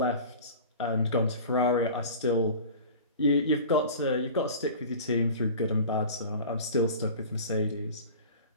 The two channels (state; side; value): inverted; both; correlation -0.38